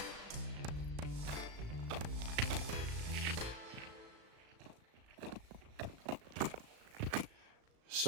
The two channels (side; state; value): left; late; 37 ms